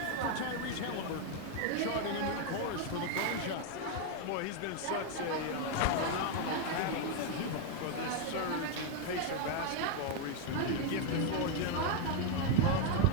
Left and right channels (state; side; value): different; both; correlation 0.01